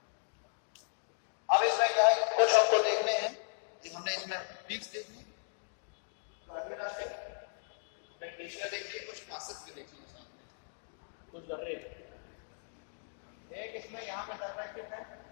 अब इसमें क्या है, कुछ हमको देखने हैं, हमने इसमें पीक्स देख ली, ग्लेशियर देख लिए, कुछ पासेस भी देख लिए साथ में, कुछ दर्रे। एक इसमें यहाँ पे दर्रा स्थित है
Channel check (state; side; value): silent; right; digital silence